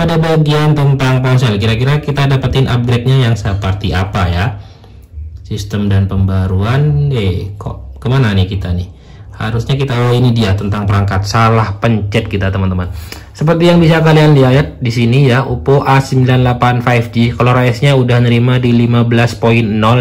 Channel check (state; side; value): identical; both; correlation 1.00